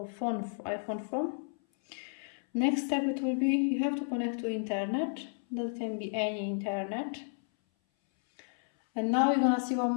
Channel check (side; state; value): right; silent; 56 dB below the other